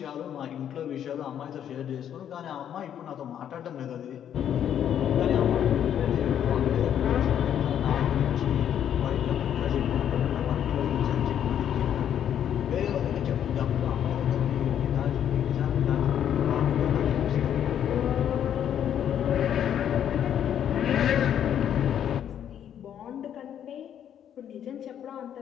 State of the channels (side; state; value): right; quieter; 9.6 dB